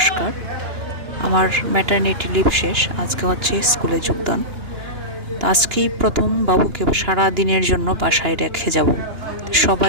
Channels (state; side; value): late; left; 2.9 ms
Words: আমার ম্যাটারনিটি লিভ শেষ, আজকে হচ্ছে স্কুলে যোগদান। তো আজকেই প্রথম বাবুকে সারা দিনের জন্য বাসায় রেখে যাব।